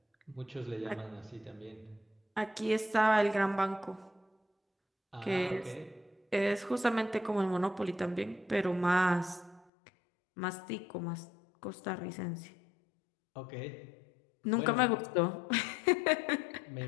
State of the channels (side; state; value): right; drops out; at 9.7 s